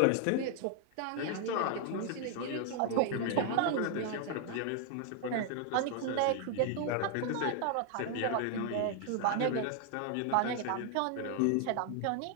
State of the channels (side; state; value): both; different; correlation 0.00